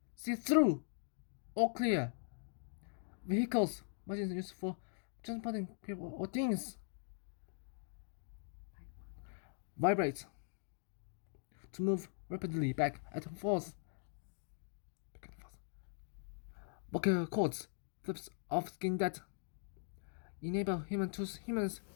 see-through, or clear. Vehicles, machines used for transporting people or things. Vibrate, to move rapidly back and forth. Vocal cords, flips of skin that enable humans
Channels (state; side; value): silent; right; digital silence